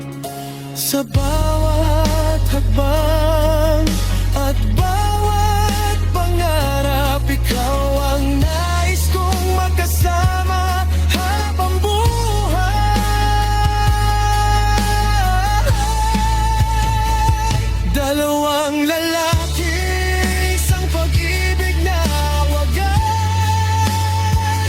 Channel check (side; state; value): both; identical; correlation 1.00